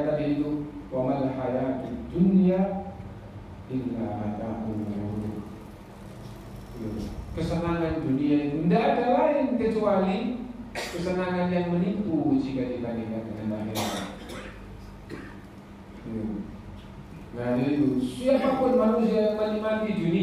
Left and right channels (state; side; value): identical; both; correlation 1.00